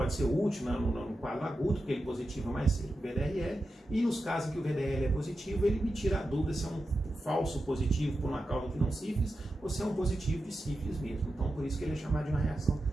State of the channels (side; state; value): both; normal; correlation 0.90